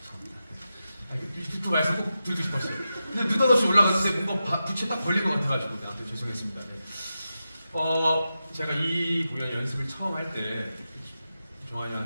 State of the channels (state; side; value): inverted; both; correlation -0.90